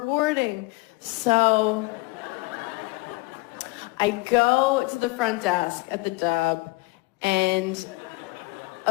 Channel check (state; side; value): quieter; right; 24.2 dB